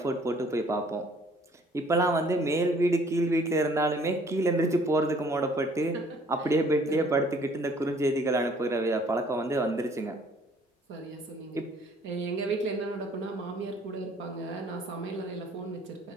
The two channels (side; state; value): both; normal; correlation 0.58